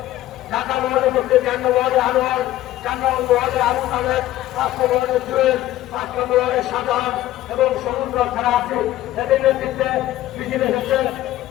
ঢাকা মহানগর মধ্যে 4 নম্বর ওয়ার্ডে আনোয়ার 4 নম্বর ওয়ার্ডে আবু তাহের 5 নম্বর ওয়ার্ডে জুয়েল 5 নম্বর ওয়ার্ডে সাধারণ এবং সমুদ্র ছাড়া আছে এদের নেতৃত্বে মিছিল এসেছে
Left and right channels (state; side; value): quieter; right; 14.6 dB